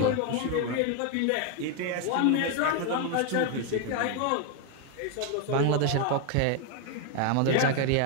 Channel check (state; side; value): different; both; correlation 0.01